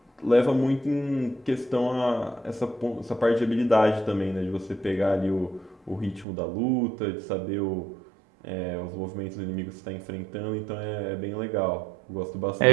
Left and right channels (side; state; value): left; drops out; at 6.2 s